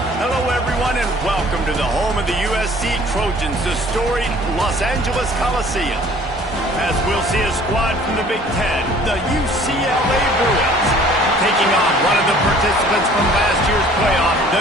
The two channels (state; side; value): normal; both; correlation 0.53